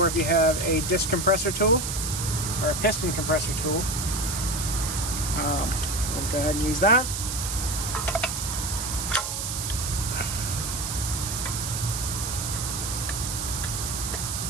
if you have a disc compressor tool or a piston compressor tool, we'll go ahead and use that.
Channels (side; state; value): right; noise; hiss, 3 dB below the sound